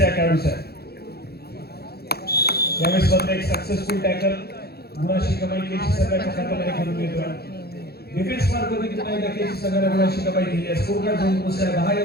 या खेळाडूचा. यावेळेस मात्र एक सक्सेसफुल टॅकल गुणाची कमाई केसी संघाच्या खात्यामध्ये करून येतोय. डिफेन्स मार्कवरती पुन्हा एकदा केसी संघाने गुणाची कमाई केली आहे. स्कोर कार्ड जाऊन पोहोचला 10 या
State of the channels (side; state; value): right; late; 0.46 ms